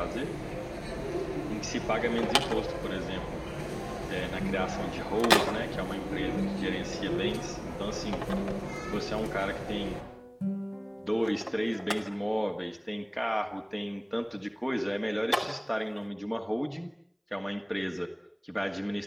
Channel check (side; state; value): both; identical; correlation 1.00